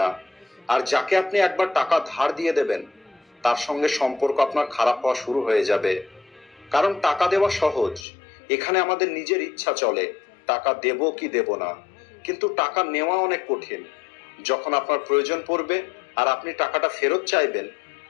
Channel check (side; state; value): right; drops out; at 8.1 s